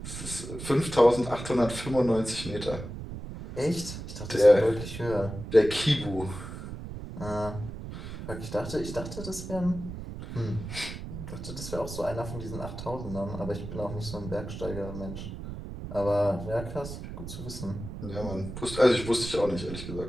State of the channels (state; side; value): noise; right; rumble, 9 dB below the sound